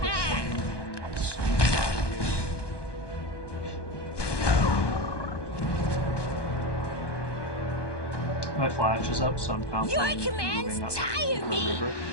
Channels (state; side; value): late; right; 1.2 ms